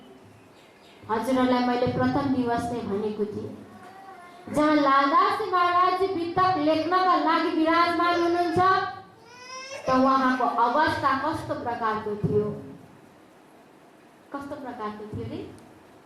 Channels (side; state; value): both; identical; correlation 1.00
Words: हजुरहरूलाई मैले प्रथम दिवस नै भनेको थिएँ, जहाँ लालदास महाराज वितक लेख्नका लागि विराजमान हुनुहुन्छ त उहाँको अवस्था कस्तो प्रकारको थियो, कस्तो प्रकारको थियो रे?